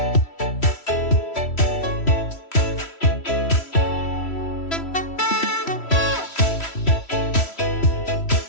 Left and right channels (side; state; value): right; late; 3.1 ms